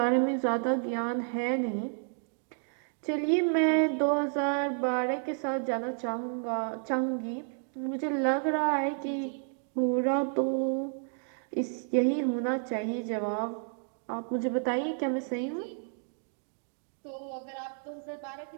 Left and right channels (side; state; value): left; silent; 57 dB below the other